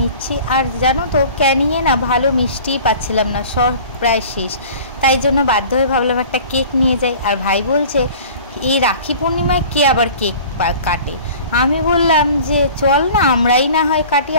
নিচ্ছি। আর জানো তো ক্যানিংয়ে না ভালো মিষ্টিই পাচ্ছিলাম না, সব প্রায় শেষ। তাই জন্য বাধ্য হয়ে ভাবলাম একটা কেক নিয়ে যাই। আর ভাই বলছে এই রাখি পূর্ণিমায় কে আবার কেক কাটে। আমি বললাম যে চল না আমরাই না হয় কাটি,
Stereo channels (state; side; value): inverted; both; correlation -0.44